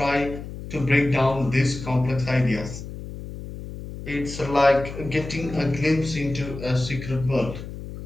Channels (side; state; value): left; noise; hum, 10 dB below the sound